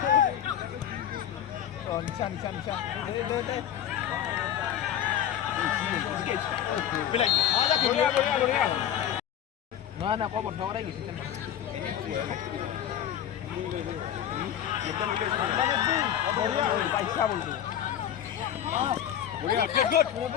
নিশা না কো বন্ধ কৰাই গৈছে পইচা বলছো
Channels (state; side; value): quieter; right; 10.4 dB